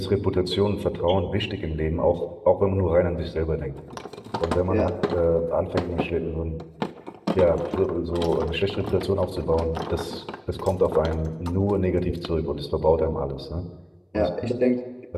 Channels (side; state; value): both; identical; correlation 1.00